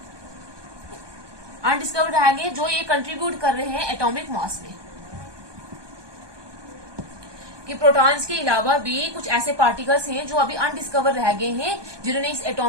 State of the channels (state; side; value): late; left; 1.2 ms